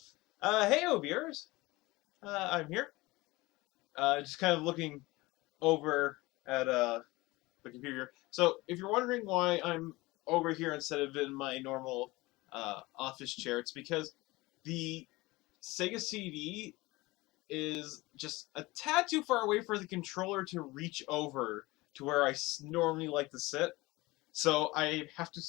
Hey, viewers. I'm here. Just kind of looking over at the computer. So, if you're wondering why I'm over here instead of in my normal office chair, it's because the Sega CD is just a tad too far away for the controller to reach over to where I normally like to sit. So I have to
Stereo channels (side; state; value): right; quieter; 21.2 dB